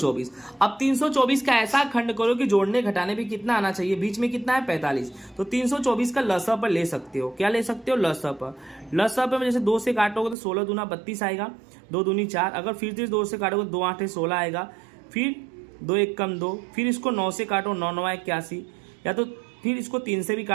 अब 324 का ऐसा खंड करो कि जोड़ने घटाने पे कितना आना चाहिए, बीच में कितना है 45। तो 324 का लसा पर ले सकते हो, क्या ले सकते हो, लसा पर। लसा पर जैसे 2 से काटोगे तो 16 दूना 32 आएगा, 2 दूनी 4, अगर फिर से 2 से काटोगे 2 8 16 आएगा, फिर 2 1 कम 2, फिर इसको 9 से काटो 9 9 81, या तो फिर इसको 3 से भी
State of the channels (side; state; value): left; drops out; at 10.4 s